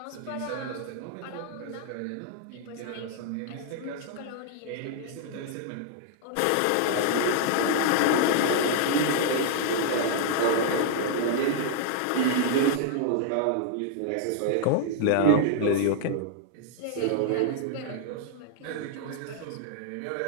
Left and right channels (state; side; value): different; both; correlation -0.01